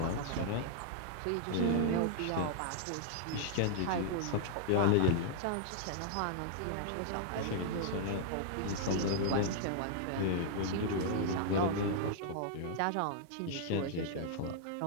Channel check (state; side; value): different; both; correlation -0.01